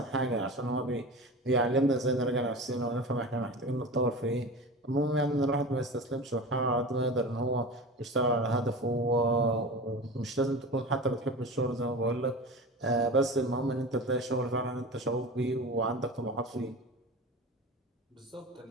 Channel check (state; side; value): normal; both; correlation 0.31